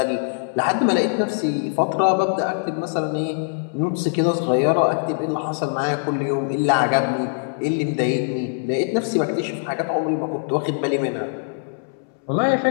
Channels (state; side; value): silent; right; 64 dB below the other